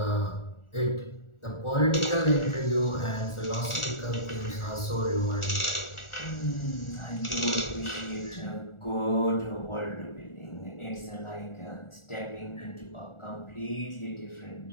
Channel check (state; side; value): late; right; 1.4 ms